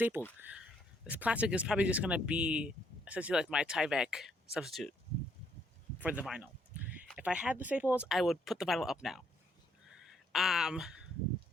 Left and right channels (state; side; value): normal; both; correlation 0.70